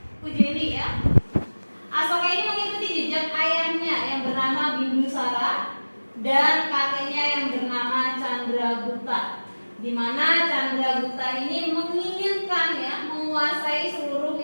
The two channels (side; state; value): both; inverted; correlation -1.00